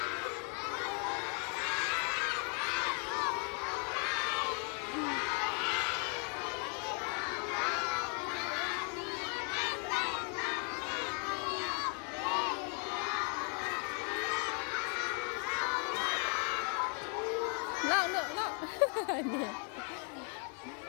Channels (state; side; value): quieter; right; 37.5 dB